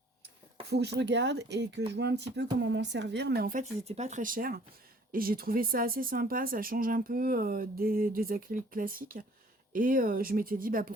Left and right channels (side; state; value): both; normal; correlation 0.56